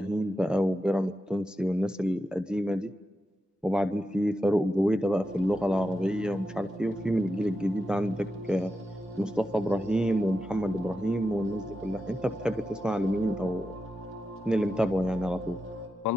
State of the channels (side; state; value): both; normal; correlation 0.89